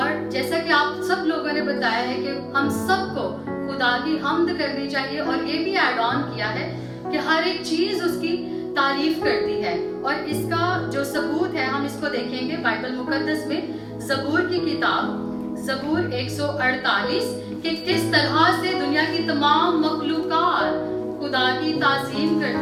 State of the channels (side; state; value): both; identical; correlation 1.00